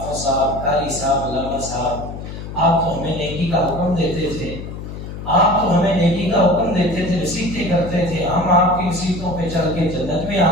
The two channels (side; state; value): left; noise; hum, 9 dB below the sound